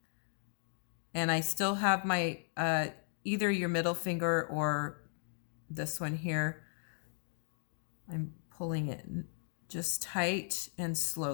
And I still have my, either your middle finger or this one here. I'm pulling it just tight and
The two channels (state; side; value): silent; right; digital silence